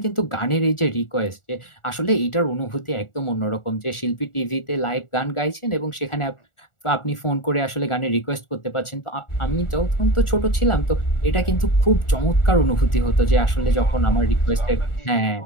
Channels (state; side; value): late; right; 1.4 ms